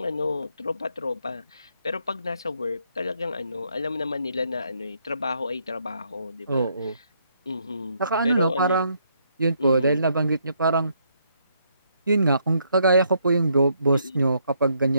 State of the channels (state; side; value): inverted; both; correlation -0.73